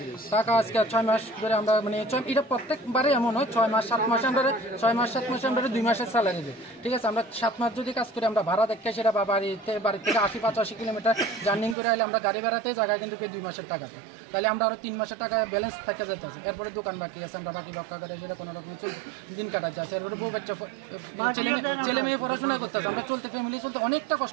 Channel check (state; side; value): drops out; left; at 11.8 s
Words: টাকা আজকে 6 মাস ধরে আমরা মানে এটা প্রত্যেকবারে এমন হয় 6 মাস 7 মাসে আমরা 6 মাস 7 মাসে আমরা 2 মাসের স্যালারি দিই, ঠিক আছে। আমরা 7 মাস যদি কাজ করি আমরা ভাড়া দেখে সেটা বা বাড়ি থেকে 80-85 কিলোমিটার জার্নিং করে আইলে আমরা গাড়ি ভাড়াতে জায়গায় কিন্তু 2 মাসের টাকা পাই, তাহলে আমরা আরো 3 মাসের টাকা ব্যালেন্স থেকে যেতেছে। এরপরে দোকান বাকি আছে, আমরা বাকি রক্ষা করে সেটা কোনো রকম দিন কাটাচ্ছে আছে। এরপরে বউ বাচ্চা ছেলে মেয়ে পড়াশোনা করতেছে, আমরা চলতে ফ্যামিলি চলতে অনেকটা